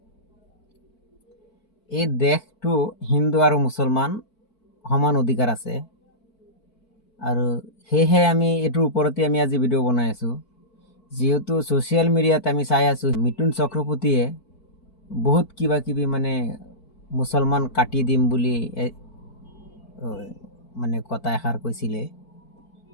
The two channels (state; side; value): late; right; 4.5 ms